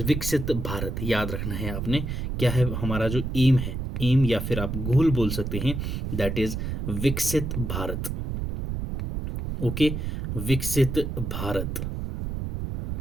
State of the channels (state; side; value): noise; right; rumble, 3 dB below the sound